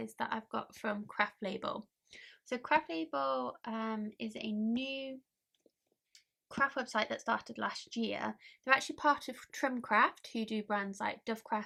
that I've got from Craft Label. So Craft Label is a new craft website that started last year. They're actually part of Trimcraft, who do brands like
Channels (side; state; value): both; identical; correlation 1.00